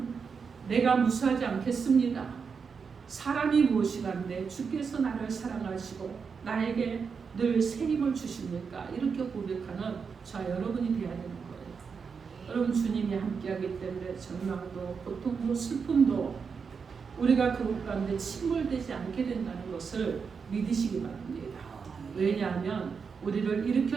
내가 무수하지 않겠습니다. 사람이 무엇이란데 주께서 나를 사랑하시고 나에게 늘 새 힘을 주십니까? 이렇게 고백하는 저 여러분이 되어야 되는 거예요. 여러분 주님이 함께하기 때문에 절망도 고통도 슬픔도 우리가 그곳 가운데 침몰되지 않게 된다는 것을 믿으시기 바랍니다. 왜냐하면 우리를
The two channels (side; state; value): left; quieter; 5.8 dB